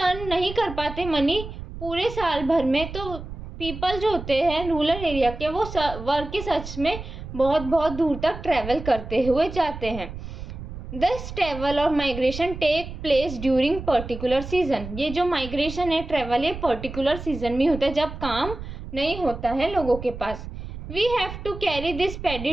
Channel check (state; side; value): noise; right; rumble, 10 dB below the sound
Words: नहीं कर पाते मनी पूरे साल भर में, तो पीपल जो होते हैं रूरल एरिया के, वो वर्क के सर्च में बहुत बहुत दूर तक ट्रैवल करते हुए जाते हैं। दिस ट्रैवल और migration take place during particular season. ये जो माइग्रेशन है, ट्रैवल, ये पर्टिकुलर सीजन में होता है जब काम नहीं होता है लोगों के पास। We have to carry this paddy